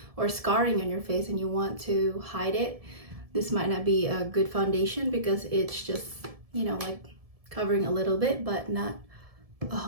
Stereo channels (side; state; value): left; late; 1.7 ms